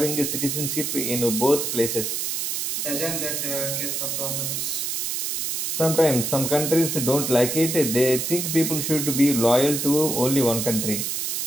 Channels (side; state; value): right; noise; hiss, 1 dB below the sound